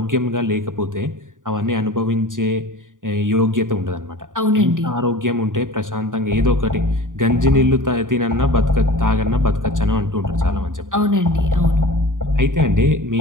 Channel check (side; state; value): left; late; 0.88 ms